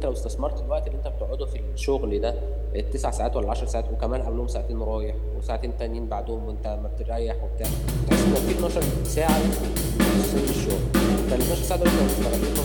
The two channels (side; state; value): both; identical; correlation 1.00